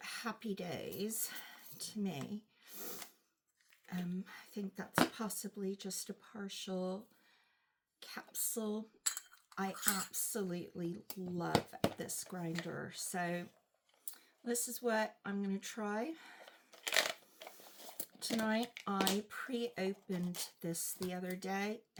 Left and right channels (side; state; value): both; identical; correlation 1.00